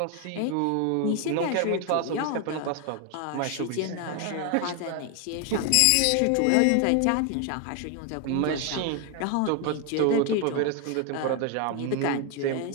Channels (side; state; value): both; different; correlation 0.01